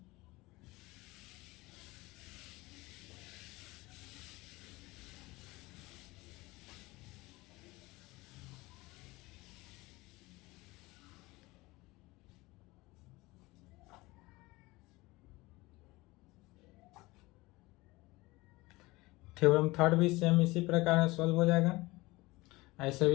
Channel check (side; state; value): right; quieter; 21.4 dB